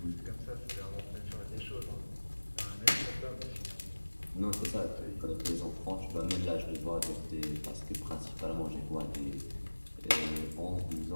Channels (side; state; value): both; inverted; correlation -1.00